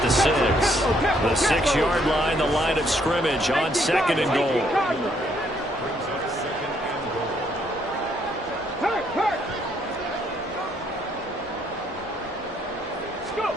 the 6. The 6-yard line, the line of scrimmage on second and goal.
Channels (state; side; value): normal; both; correlation 0.70